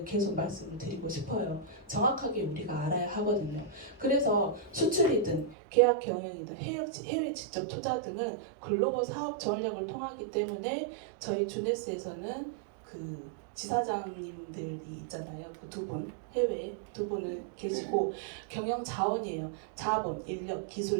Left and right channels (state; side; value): drops out; left; at 5.6 s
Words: 계속 말씀을 드리고 싶어요. 정확하게 우리가 알아야 하거든요. 그래서 수출이든 계약 경영이든 해외 직접 투자 등은 글로벌 사업 전략을 통하기 때문에 저희 주네스에서는 그 지사장님들이 있잖아요. 그 두 분, 해외에 두 분을 계시고 경영 자원이에요. 자본, 인력,